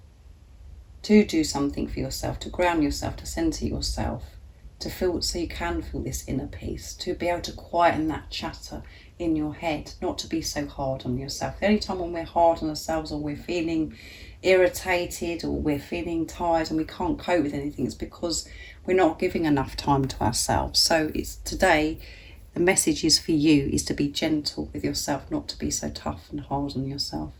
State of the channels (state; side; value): identical; both; correlation 1.00